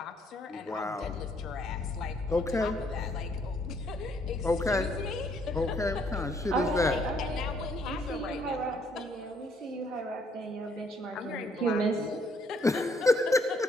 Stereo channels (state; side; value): normal; both; correlation 0.67